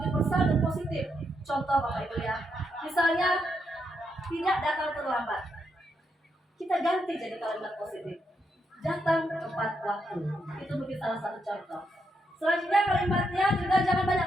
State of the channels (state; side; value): normal; both; correlation 0.80